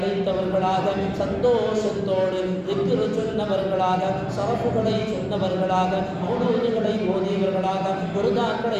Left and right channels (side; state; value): both; identical; correlation 1.00